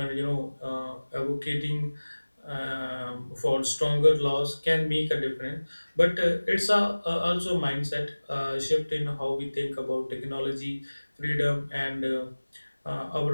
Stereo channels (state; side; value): inverted; both; correlation -1.00